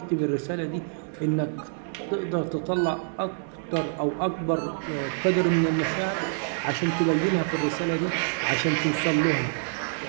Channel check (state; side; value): silent; left; digital silence